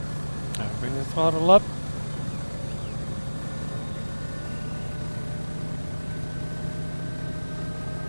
Bring the throttle up.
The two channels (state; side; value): inverted; both; correlation -1.00